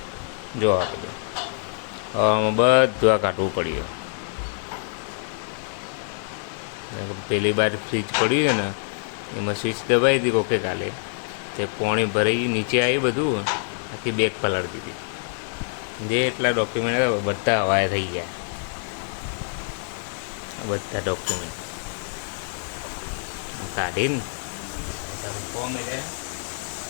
જો આ બધું હવામાં બધું આ કાઢવું પડ્યું. પેલી બાર ફ્રીજ પડ્યું છે ને એમાં સ્વિચ દબાવી હતી કોકે કાલે, તે પાણી ભરાઈ નીચે આવી, બધું આખી બેગ પલાળી દીધી. જે એટલા ડોક્યુમેન્ટ હતા બધા હવાએ થઈ ગયા, બધા ડોક્યુમેન્ટ કાઢીને ફોર્મ એટલે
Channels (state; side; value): silent; right; digital silence